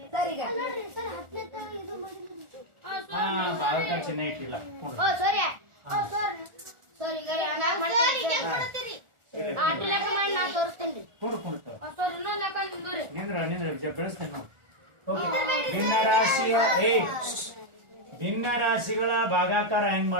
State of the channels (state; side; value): late; left; 1.4 ms